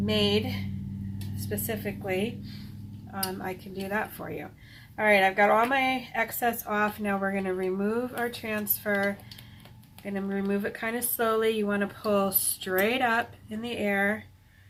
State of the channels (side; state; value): both; identical; correlation 1.00